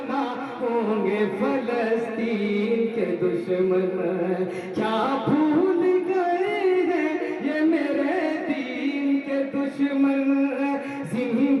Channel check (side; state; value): both; identical; correlation 1.00